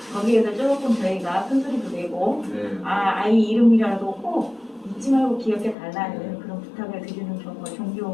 거기에서 조금 저희가 큰 소리도 내고 아이 이름이라도 꼭 잊지 말고 기억해 달라는 그런 부탁을 드리는 경우가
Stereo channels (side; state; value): right; drops out; at 5.8 s